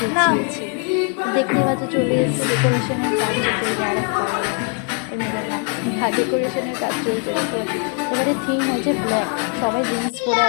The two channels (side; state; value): right; quieter; 37.4 dB